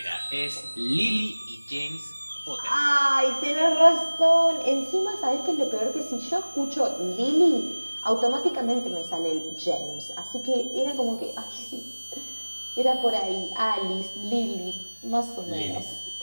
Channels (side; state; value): both; inverted; correlation -1.00